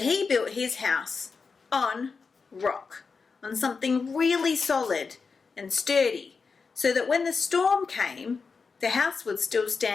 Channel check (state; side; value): quieter; right; 4.9 dB